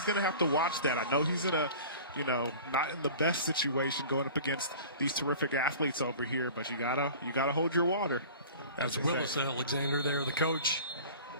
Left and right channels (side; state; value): both; inverted; correlation -0.41